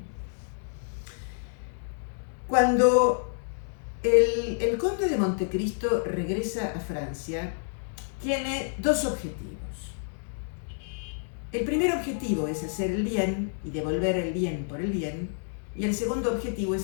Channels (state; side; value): silent; right; digital silence